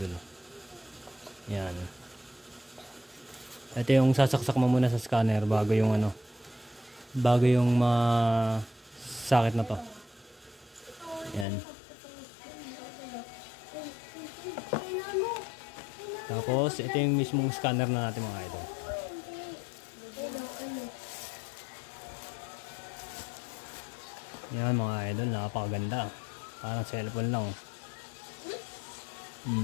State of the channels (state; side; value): drops out; right; at 11.5 s